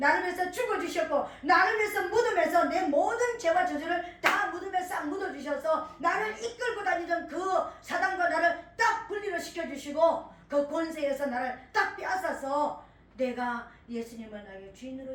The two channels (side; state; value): both; identical; correlation 1.00